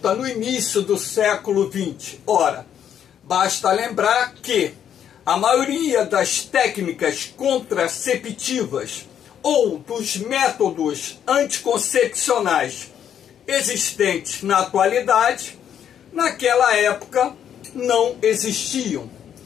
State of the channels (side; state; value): right; quieter; 9.2 dB